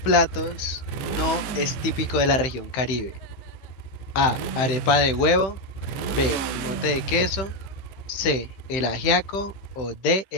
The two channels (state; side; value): late; right; 15 ms